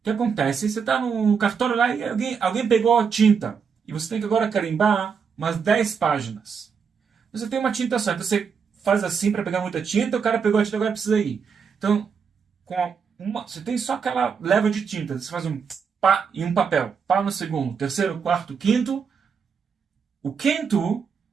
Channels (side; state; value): left; quieter; 6.2 dB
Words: que acontece? Você está no cartório lá e alguém pegou a tinta, e você tem que agora carimbar umas 10 páginas. Você tem uma tinta só, então você faz assim para pegar muita tinta, o cara pegou a tinta, agora precisa ir. Então, você tem só aquela leva de tinta, você faz um pá e um papel, pá no segundo, terceiro, quarto, quinto. O quinto